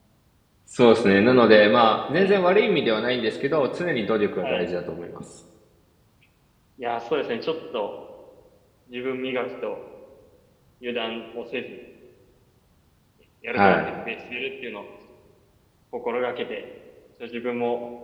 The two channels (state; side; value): identical; both; correlation 1.00